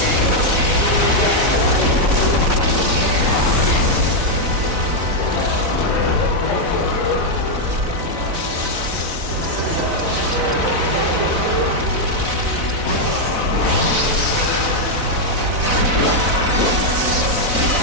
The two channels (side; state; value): left; late; 4.0 ms